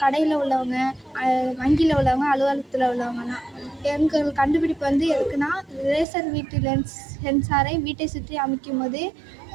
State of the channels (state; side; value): drops out; left; at 6.1 s